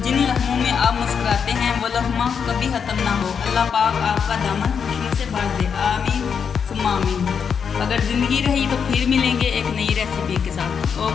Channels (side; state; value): right; quieter; 6.8 dB